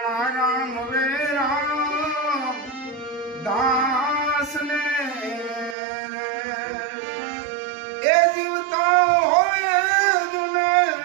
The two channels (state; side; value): drops out; left; at 5.8 s